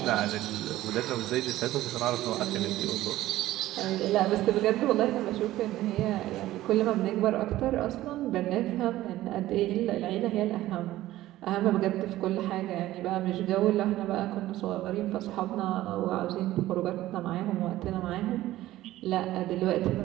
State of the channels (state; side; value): quieter; left; 15.4 dB